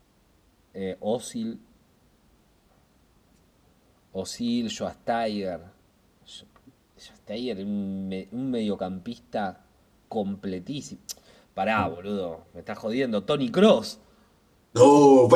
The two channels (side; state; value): both; identical; correlation 1.00